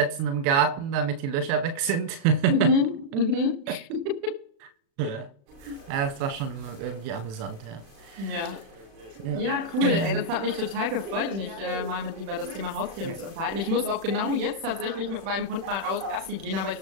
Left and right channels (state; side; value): late; left; 36 ms